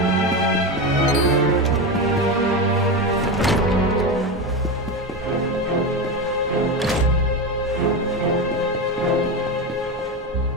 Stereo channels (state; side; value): normal; both; correlation 0.18